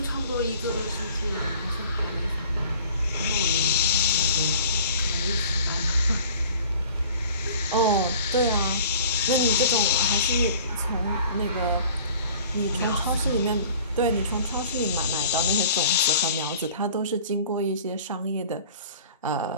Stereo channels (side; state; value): both; inverted; correlation -0.47